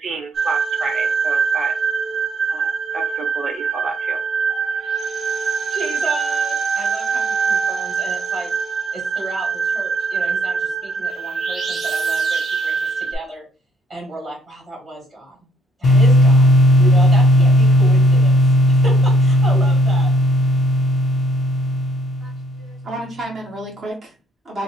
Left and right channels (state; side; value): normal; both; correlation 0.66